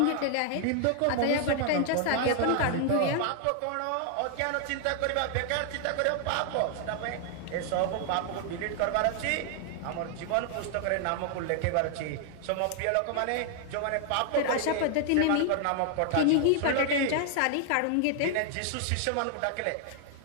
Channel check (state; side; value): different; both; correlation 0.00